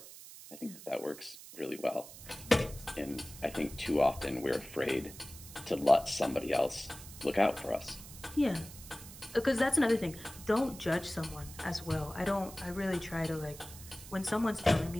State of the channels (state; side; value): noise; right; hiss, 15 dB below the sound